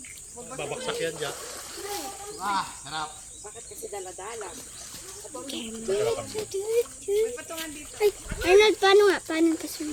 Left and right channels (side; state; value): both; identical; correlation 1.00